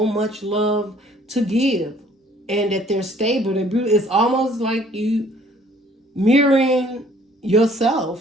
much love to give, and that they're stable, they're beautiful. It's almost like you mirroring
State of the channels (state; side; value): normal; both; correlation 0.58